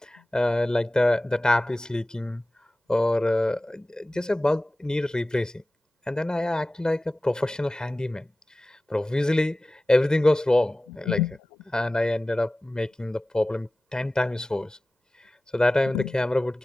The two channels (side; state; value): both; normal; correlation 0.97